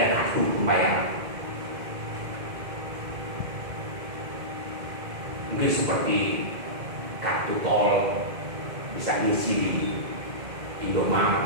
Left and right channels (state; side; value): late; left; 2.1 ms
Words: kartu pembayaran. Mungkin seperti kartu tol bisa diisi di